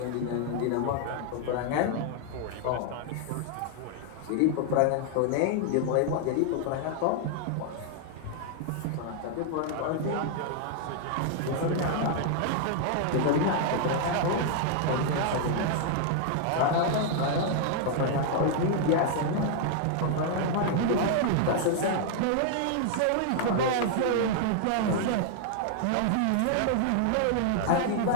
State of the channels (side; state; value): both; different; correlation 0.00